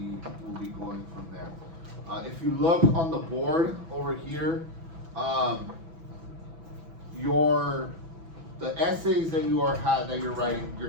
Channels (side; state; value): left; late; 6.0 ms